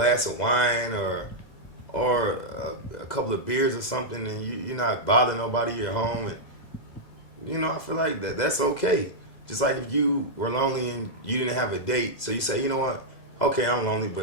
of wine or a couple of beers or something, and you're not bothering nobody, you're home, and you know, I feel like that's okay. Just like if you were lonely and you didn't have a date, so you say, you know what, okay, I'm lonely,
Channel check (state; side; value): late; right; 2.0 ms